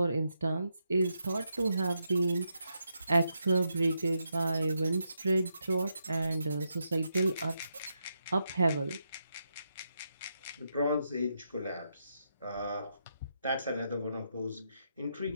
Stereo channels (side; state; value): both; inverted; correlation -0.82